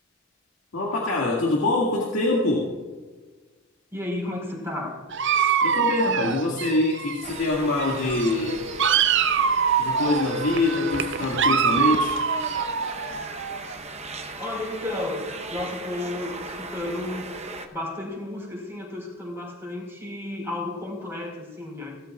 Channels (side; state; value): both; normal; correlation 0.13